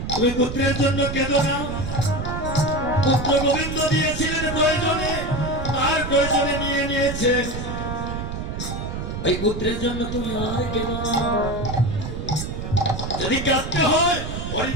তুমি পুত্রের জন্য কেঁদো না। পুত্র গোবিন্দ দিয়েছিলেন প্রয়োজনে, তার প্রয়োজনে নিয়ে নিয়েছেন। এই পুত্রের জন্য তুমি আর কেঁদো না। যদি কাঁদতে হয় হরি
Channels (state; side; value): noise; right; rumble, 5 dB below the sound